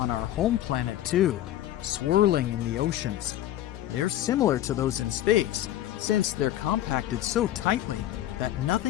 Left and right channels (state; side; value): quieter; right; 13.0 dB